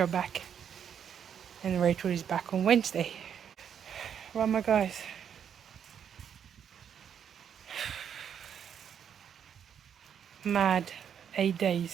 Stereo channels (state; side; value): quieter; left; 8.3 dB